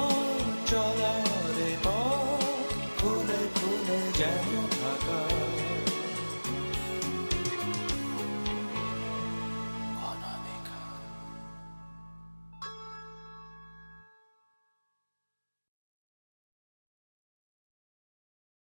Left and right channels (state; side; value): inverted; both; correlation -1.00